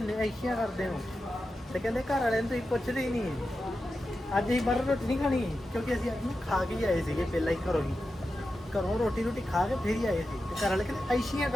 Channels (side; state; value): both; normal; correlation 0.91